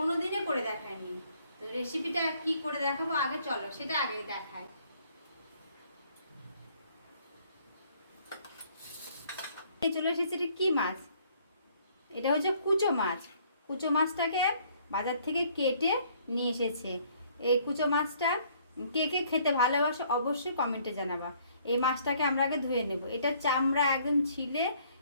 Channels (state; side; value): inverted; both; correlation -0.62